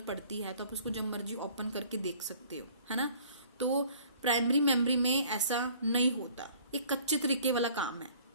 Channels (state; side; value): inverted; both; correlation -0.54